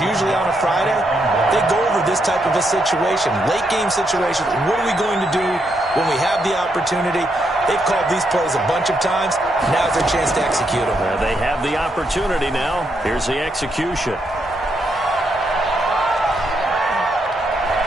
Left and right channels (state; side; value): normal; both; correlation 0.79